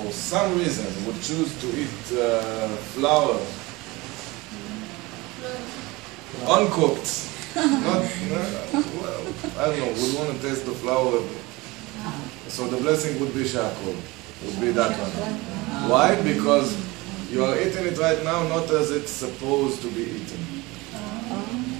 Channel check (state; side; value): quieter; left; 22.6 dB